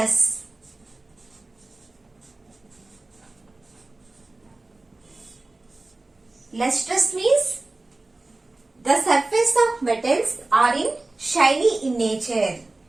Lustrous means the surface of metals are shiny in nature.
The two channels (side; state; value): left; quieter; 3.0 dB